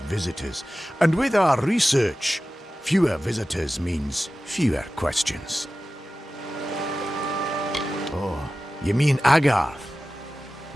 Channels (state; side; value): normal; both; correlation 0.95